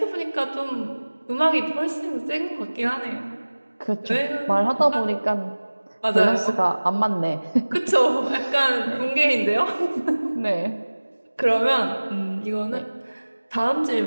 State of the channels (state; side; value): inverted; both; correlation -1.00